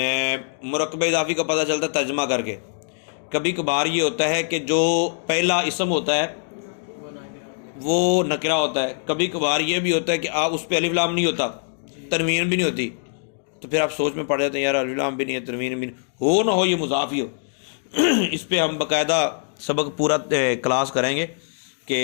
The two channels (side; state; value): right; silent; digital silence